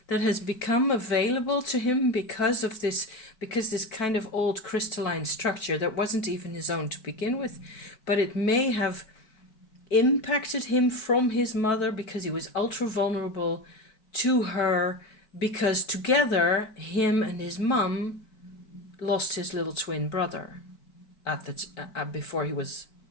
that has become available to him because this kind of old crystalline structure that wasn't even his own to begin with, but it may have impacted him from his mother because he was ultra vulnerable to her, because together him and his mum lost his little twin brother at the before he was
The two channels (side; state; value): right; late; 4.5 ms